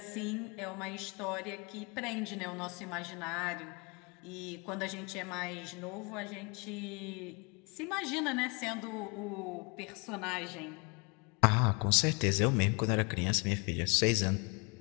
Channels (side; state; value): right; quieter; 31.3 dB